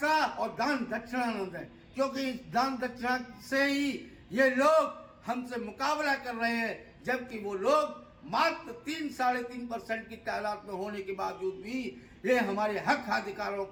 और दान दक्षिणा न दें, क्योंकि इस दान दक्षिणा से ही ये लोग हमसे मुकाबला कर रहे हैं, जबकि वो लोग मात्र 3-3.5% की तादाद में होने के बावजूद भी ये हमारे हक अधिकारों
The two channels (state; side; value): identical; both; correlation 1.00